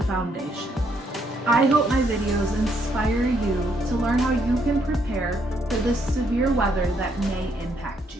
foundation. I hope my videos inspire you to learn how you can prepare for the severe weather that may impact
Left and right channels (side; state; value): both; normal; correlation 0.72